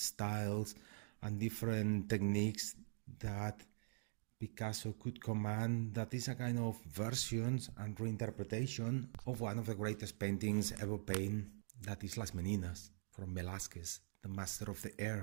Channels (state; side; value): silent; left; digital silence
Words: and different techniques that Picasso could command. That is a kind of versions and reinterpretation of one of the greatest paintings ever painted, that is Las Meninas from Velázquez, the master of the